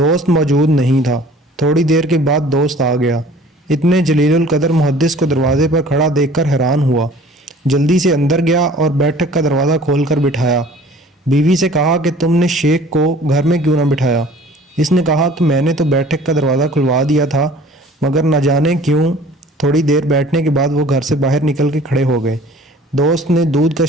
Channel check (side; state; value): both; normal; correlation 0.49